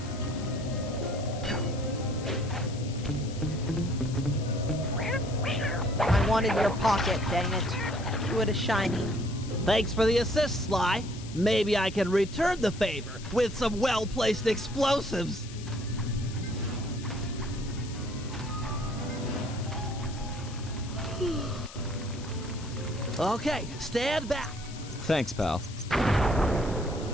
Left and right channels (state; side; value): noise; left; hiss, 16 dB below the sound